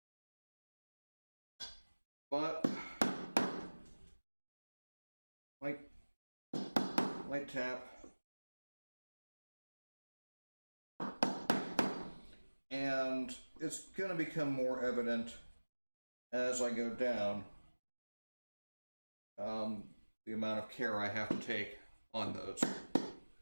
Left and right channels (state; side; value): inverted; both; correlation -1.00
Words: But light tap. And it's going to become more evident as I go down the amount of care I have to take on those.